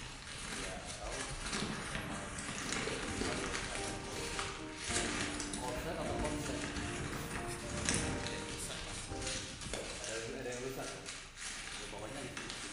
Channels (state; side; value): identical; both; correlation 1.00